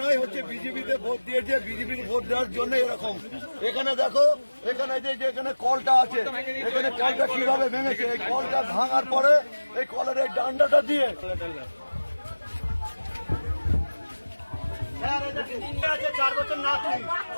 হচ্ছে বিজেপিতে ভোট দিয়েছে, বিজেপির ভোট দেওয়ার জন্য এরকম। এখানে দেখো, এখানে যে এখানে কলটা আছে, এখানে কলটা কিভাবে ভেঙেছে, এই কলটা ভাঙার পরে এই কলের এই ডান্ডাটা দিয়ে আছে 4 বছর নাতি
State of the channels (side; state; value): both; inverted; correlation -1.00